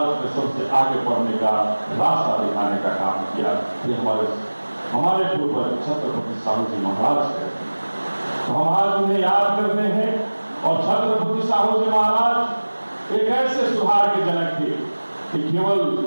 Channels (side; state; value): both; inverted; correlation -1.00